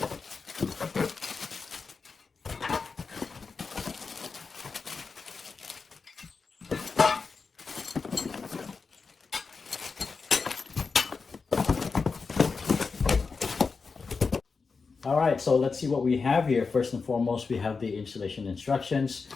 All right, so let's see what we have here. First and foremost, we have the installation instructions.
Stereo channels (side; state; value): right; quieter; 4.8 dB